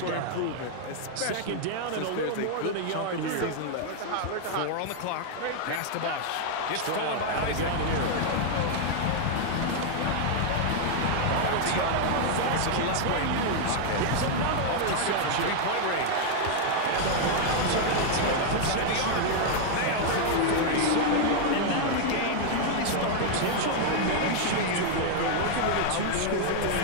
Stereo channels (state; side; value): different; both; correlation 0.00